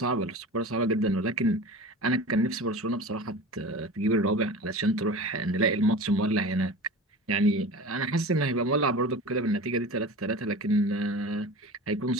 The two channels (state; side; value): normal; both; correlation 0.34